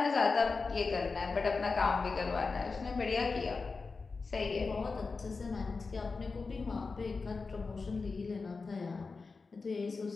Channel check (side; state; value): right; quieter; 4.3 dB